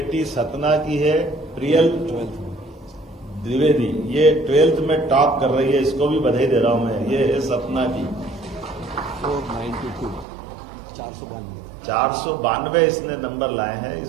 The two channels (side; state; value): left; drops out; at 10.2 s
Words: सतना की है, प्रियल द्विवेदी। ये 12th में टॉप कर रही है, इसको भी बधाई दे रहा हूं मैं। ये है सतना की 492 इसने नंबर लाए हैं,